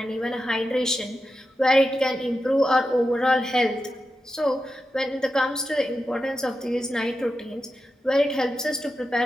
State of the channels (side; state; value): both; normal; correlation 0.90